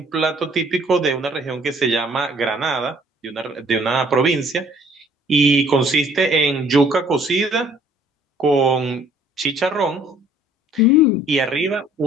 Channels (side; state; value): both; normal; correlation 0.58